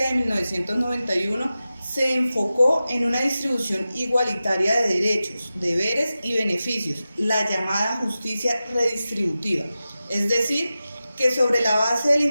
de 1991 se enfocó en una distribución igualitaria de derechos, deberes y beneficios, la llamada justicia redistributiva, es decir, que sobre la base del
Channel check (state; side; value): inverted; both; correlation -0.94